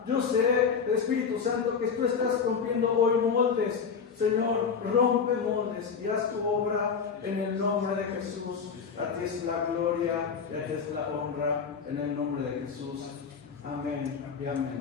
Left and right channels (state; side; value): quieter; right; 6.1 dB